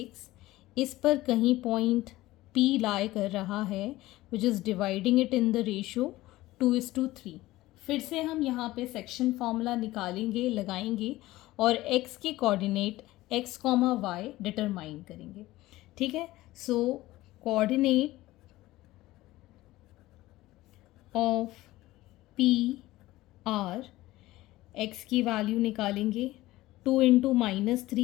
इस पर कहीं पॉइंट P लाई कर रहा है, which is dividing it in the ratio 2:3। फिर से हम यहाँ पे सेक्शन फॉर्मूला निकालेंगे, लगाएंगे और x के कोऑर्डिनेट x, y डिटरमाइन करेंगे। ठीक है, so coordinate of P are, x की वैल्यू निकालेंगे 2 into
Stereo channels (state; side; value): quieter; right; 17.4 dB